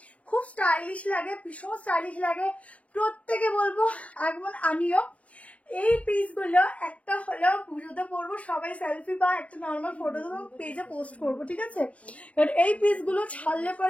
খুব স্টাইলিশ লাগে, ভীষণ স্টাইলিশ লাগে, প্রত্যেকে বলবো একবার আমিও এই পিসগুলো একটা হলেও পুজোতে পরবো, সবাই সেলফি বা একটা নর্মাল ফটো দেবো, পেজে পোস্ট করবো, ঠিক আছে। এবার এই পিসগুলো ছাড়লে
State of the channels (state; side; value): late; right; 0.066 ms